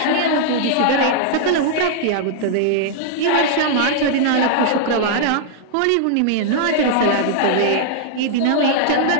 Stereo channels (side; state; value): both; different; correlation -0.01